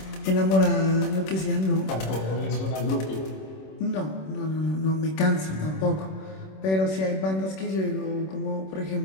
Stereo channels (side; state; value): right; late; 26 ms